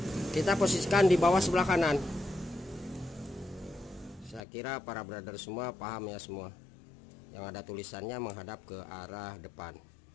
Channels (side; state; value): right; drops out; at 4.5 s